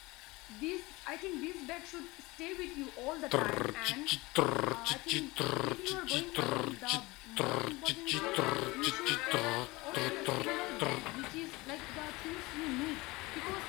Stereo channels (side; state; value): right; quieter; 22.3 dB